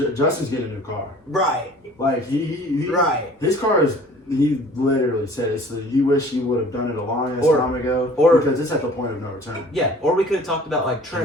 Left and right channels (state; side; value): normal; both; correlation 0.49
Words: Justin's getting a new car. Right, Like, he right. his car is. He literally said it. So he wished he would have done it a long Or- time ago. or- because it's at the point of no return. Yeah, or we could have talked about, like,